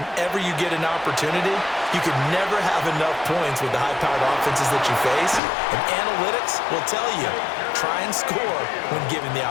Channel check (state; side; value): drops out; right; at 5.4 s